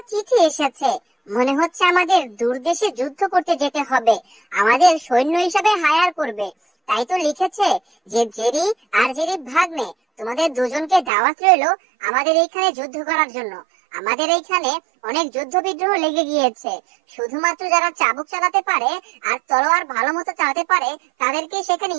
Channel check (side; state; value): left; drops out; at 11.1 s